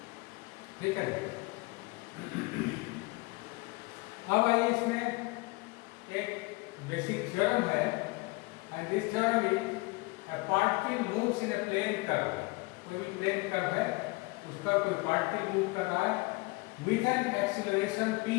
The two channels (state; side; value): quieter; right; 24.9 dB